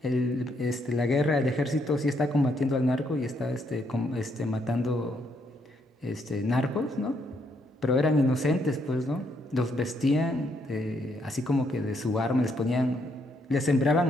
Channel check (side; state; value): both; normal; correlation 0.74